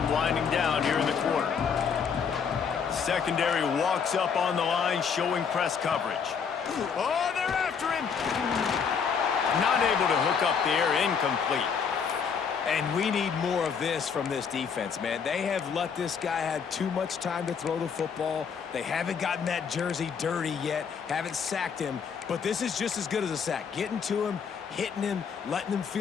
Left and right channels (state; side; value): quieter; right; 6.5 dB